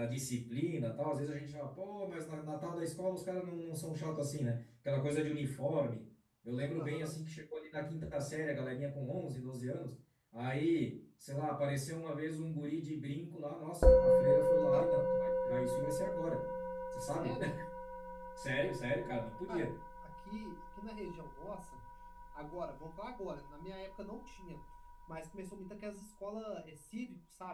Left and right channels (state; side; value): identical; both; correlation 1.00